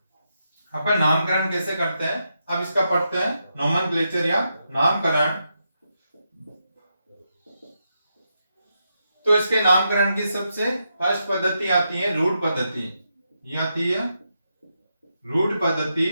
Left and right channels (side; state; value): both; inverted; correlation -0.84